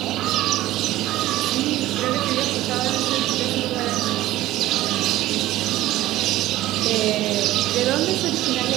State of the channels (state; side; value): quieter; left; 15.7 dB